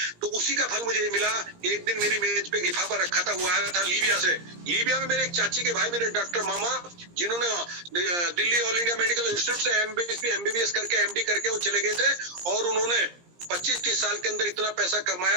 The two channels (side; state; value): left; late; 17 ms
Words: तो उसी का फल मुझे मिला। एक दिन मेरी मेज पे लिफाफा रखा था, वो आया था लीबिया से। लीबिया में मेरे एक चाची के भाई, मेरे डॉक्टर मामा, जिन्होंने Delhi all India medical institute से एमबीबीएस करके एमडी करके वो चले गए थे, और उन्होंने 25-30 साल के अंदर इतना पैसा